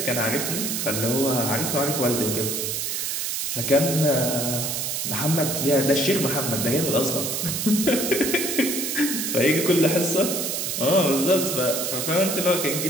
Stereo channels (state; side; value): noise; right; hiss, 2 dB below the sound